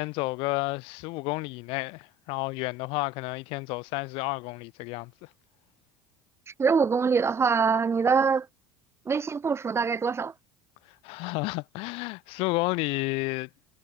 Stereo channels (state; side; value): normal; both; correlation 0.49